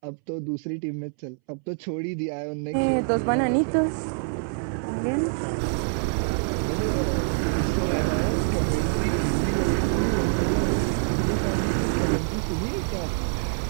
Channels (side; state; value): left; silent; 61 dB below the other